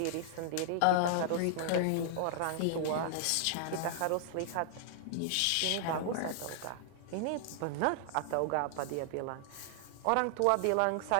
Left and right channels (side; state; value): both; different; correlation -0.01